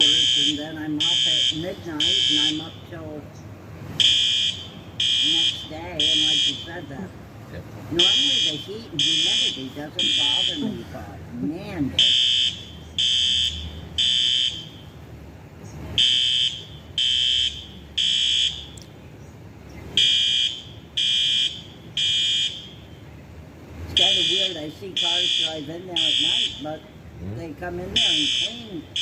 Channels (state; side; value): identical; both; correlation 1.00